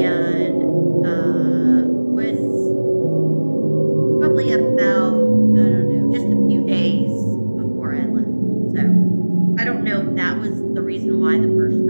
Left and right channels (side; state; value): both; inverted; correlation -1.00